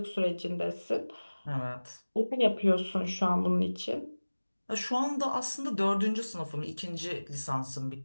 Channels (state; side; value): inverted; both; correlation -1.00